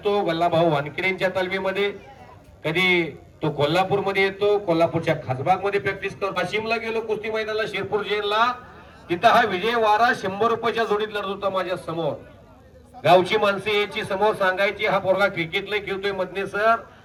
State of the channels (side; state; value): both; identical; correlation 1.00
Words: गल्लाभाऊ वानखेडेंच्या तालमीमध्ये, कधी तो कोल्हापूर मध्ये येतो, कोल्हापूरच्या खासबाग मध्ये प्रॅक्टिस करतो. वाशिमला गेलो कुस्ती मैदानाला, शिरपूर जेलला, तिथं हा विजय वारा 100 रुपयाच्या जोडीत लढत होता माझ्या समोर. गावची माणसं याची समोर सांगायची, हा पोरगा क्रिकेटला खेळतोय मधने सर,